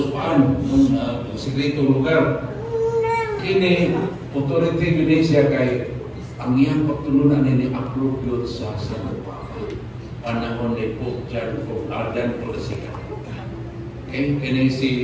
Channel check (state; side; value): identical; both; correlation 1.00